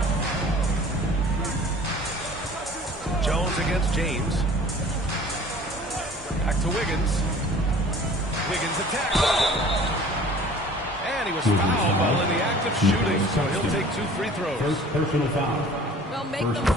Jones against James. Back to Wiggins. Wiggins attacks. And he was fouled while in the act of shooting, so he'll take 2 free throws. First personal foul. Well, make First them team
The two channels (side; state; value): both; normal; correlation 0.47